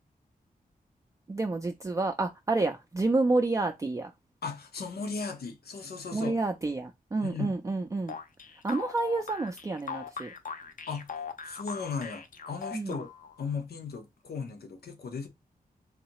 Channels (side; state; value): both; normal; correlation 0.75